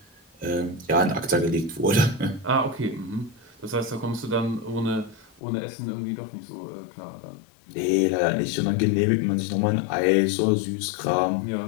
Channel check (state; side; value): drops out; right; at 5.4 s